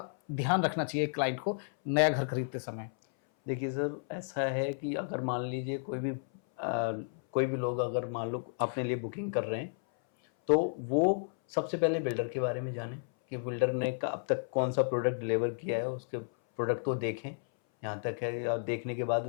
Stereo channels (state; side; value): silent; right; 56 dB below the other